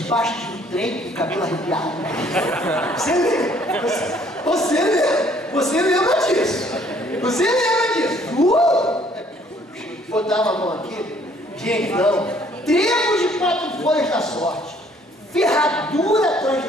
de um trem com o cabelo arrepiado. Você lembra disso? Você lembra disso? Botava a mão aqui. Gente, não. Trevo de 4 folhas da sorte. Ferradura atrás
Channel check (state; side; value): normal; both; correlation 0.61